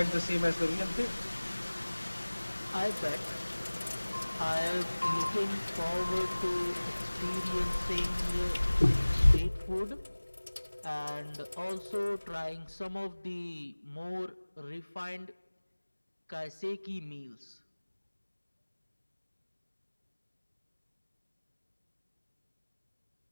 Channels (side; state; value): both; inverted; correlation -1.00